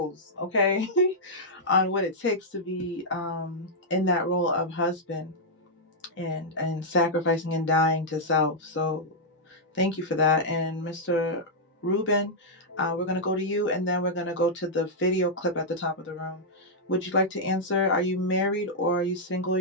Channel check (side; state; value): both; normal; correlation -0.07